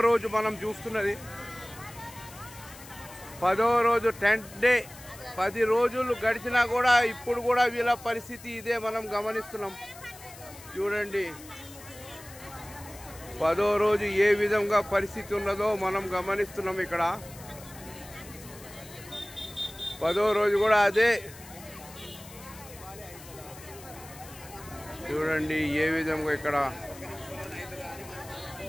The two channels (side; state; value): left; noise; hiss, 18 dB below the sound